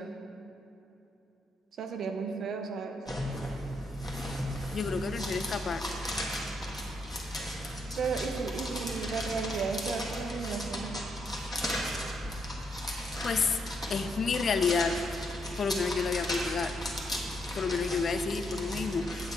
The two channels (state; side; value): normal; both; correlation 0.77